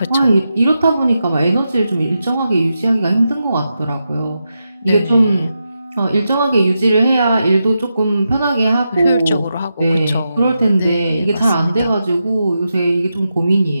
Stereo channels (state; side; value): inverted; both; correlation -0.87